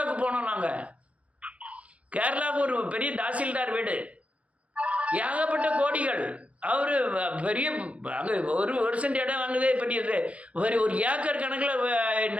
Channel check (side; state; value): left; late; 0.064 ms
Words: போனோம் நாங்கள். கேரளாவுக்கு ஒரு பெரிய தாசில்தார் வீடு, ஏகப்பட்ட கோடிகள். அவர் பெரிய அங்கே ஒரு சென்ட் இடம் வாங்குதே பெரியது, ஒரு ஏக்கர் கணக்கில்